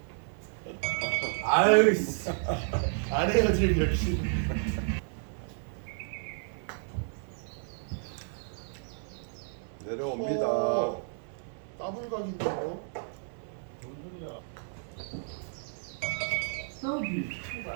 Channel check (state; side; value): silent; left; digital silence